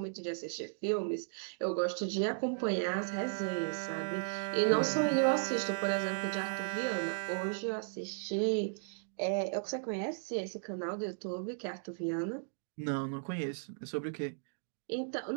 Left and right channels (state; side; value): silent; left; digital silence